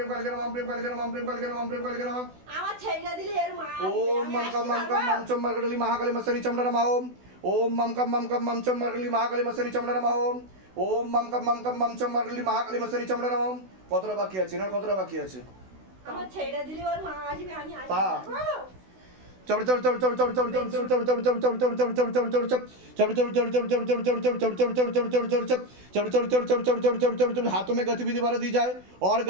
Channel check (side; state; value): left; late; 16 ms